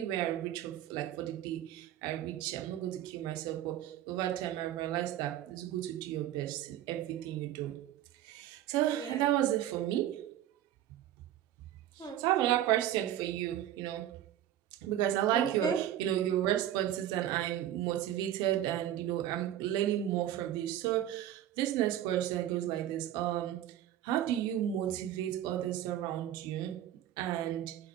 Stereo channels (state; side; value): quieter; left; 12.0 dB